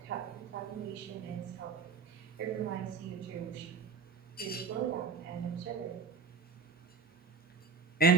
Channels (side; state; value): left; quieter; 5.0 dB